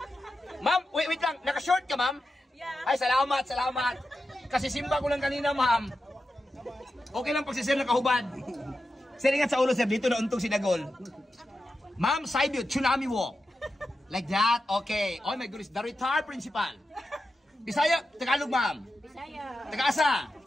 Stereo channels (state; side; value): normal; both; correlation 0.90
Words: Ma'am, wait lang, naka-short ka ma'am? Yeah. Ay, salamat. Kasi simba ko lang kanina ma'am. Okay lang pag si sir nakahubad. Sir, ingat sa ulo sir, dito na untong si Dagol. Ma'am, side view, tsunami walk. Like that, okay. Oh my goodness, the retired principal. Bisaya, Tagalog ma'am. Bisaya. Taga-asa?